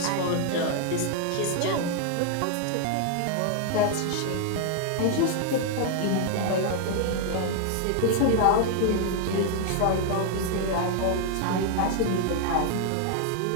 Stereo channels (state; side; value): different; both; correlation 0.00